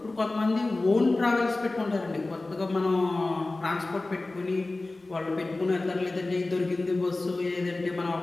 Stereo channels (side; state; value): right; quieter; 3.1 dB